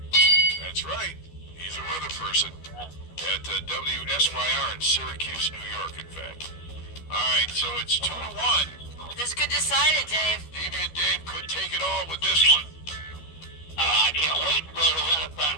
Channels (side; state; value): right; late; 12 ms